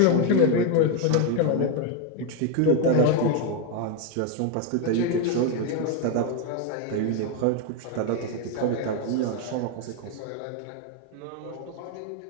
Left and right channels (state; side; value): different; both; correlation 0.02